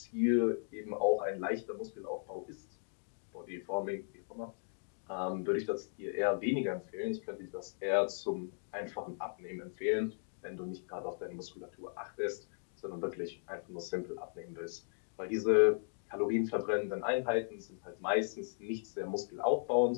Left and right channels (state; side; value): silent; right; digital silence